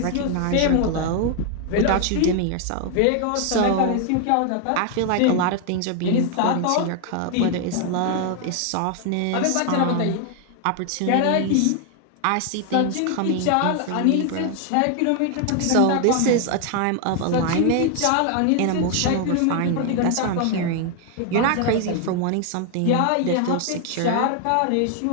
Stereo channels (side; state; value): both; different; correlation 0.00